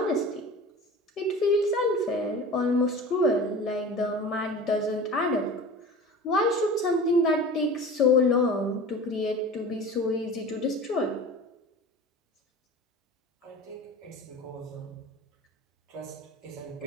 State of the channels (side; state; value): both; normal; correlation 0.36